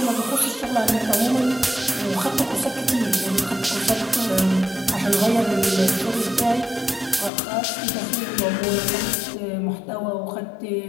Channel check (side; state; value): right; drops out; at 7.3 s